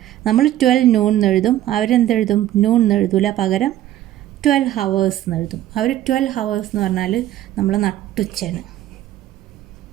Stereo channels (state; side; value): quieter; left; 13.2 dB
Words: നമ്മൾ 12 noon എന്നെഴുതും, അവരെന്തെഴുതും? noon എന്നെഴുതൂല, പകരം 12 hours എന്നെഴുതും. അവർ 12 hours എന്ന് പറഞ്ഞാൽ നമ്മൾ നട്ടുച്ചയാണ്.